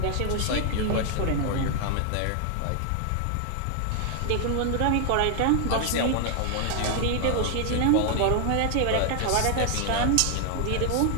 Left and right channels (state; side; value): different; both; correlation 0.00